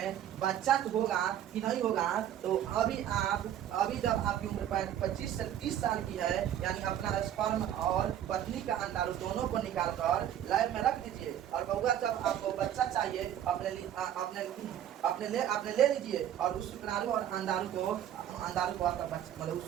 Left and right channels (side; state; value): left; quieter; 10.8 dB